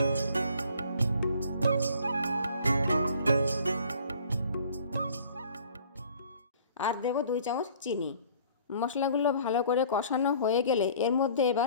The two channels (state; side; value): inverted; both; correlation -0.53